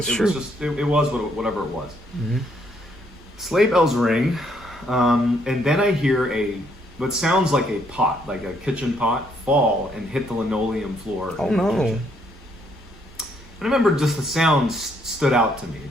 was whatever it was. Mm-hmm. Sleigh bells ring, and then I hear what sounds like a pot, like a kitchen pot, fall and hit the linoleum floor. Oh no. And I remember just the sound stood out to me. It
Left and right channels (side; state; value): both; normal; correlation 0.70